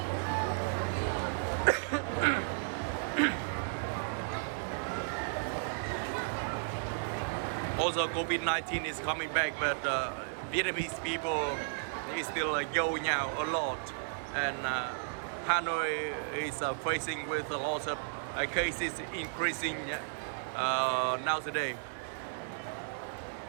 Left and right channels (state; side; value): silent; left; digital silence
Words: Also, COVID-19 is coming back, but Vietnamese people is still going out a lot, and Hanoi is facing with a lot of cases increasing nowadays.